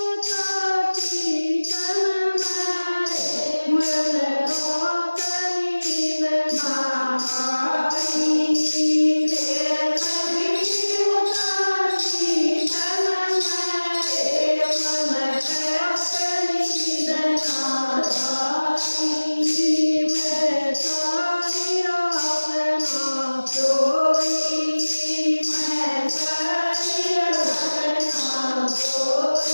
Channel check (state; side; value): inverted; both; correlation -1.00